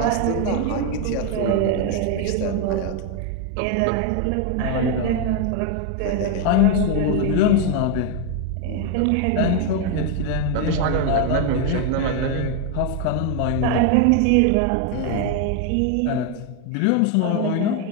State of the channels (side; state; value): both; different; correlation 0.01